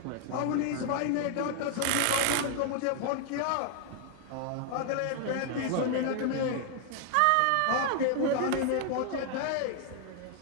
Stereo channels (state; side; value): different; both; correlation 0.00